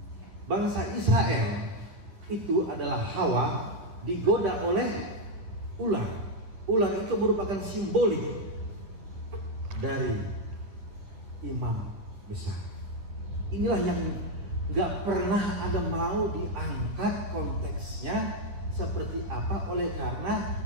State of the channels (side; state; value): left; late; 10 ms